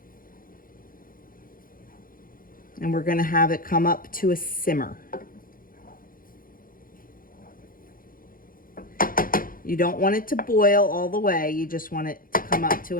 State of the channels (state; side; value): late; right; 0.41 ms